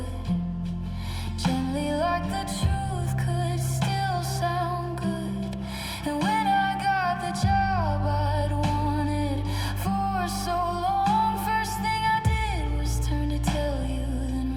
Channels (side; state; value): both; identical; correlation 1.00